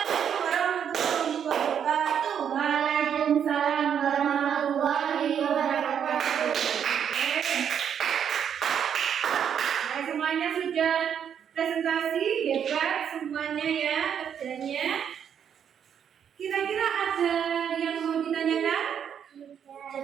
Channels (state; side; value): quieter; left; 8.4 dB